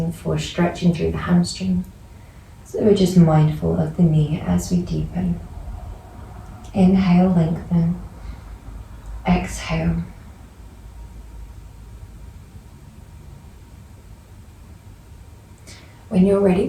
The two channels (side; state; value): both; identical; correlation 1.00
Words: for stretching through the hamstring. So we're just mindful of the knee as we deepen. Inhale, lengthen. Exhale. When you're ready,